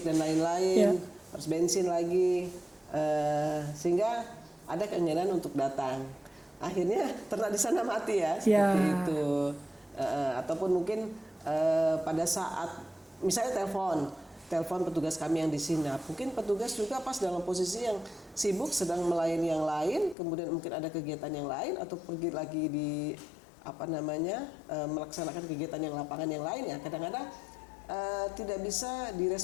dan lain-lain. Yeah. Harus bensin lagi, sehingga ada keengganan untuk datang. Akhirnya ternak di sana mati ya, seperti itu. Ataupun mungkin pada saat misalnya telepon petugas kami yang di sini, mungkin petugas juga pas dalam posisi yang sibuk sedang melayani yang lain, kemudian mungkin ada kegiatan yang lain atau pergi lagi di melaksanakan kegiatan yang lapangan yang lain ya. Kadang-kadang tidak bisa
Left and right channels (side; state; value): right; drops out; at 20.2 s